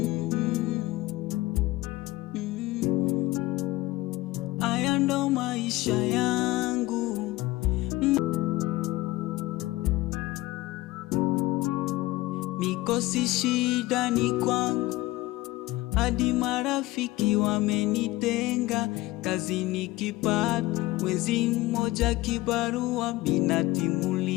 Haya ndo maisha yangu. Mikosi shida ni kwangu. Hadi marafiki wamenitenga. Kazi nikipata mwezi mmoja kibarua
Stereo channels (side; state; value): right; quieter; 18.8 dB